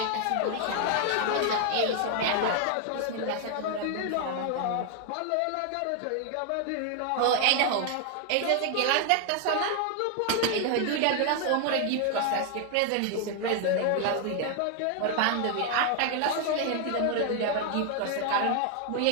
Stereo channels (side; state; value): both; different; correlation 0.00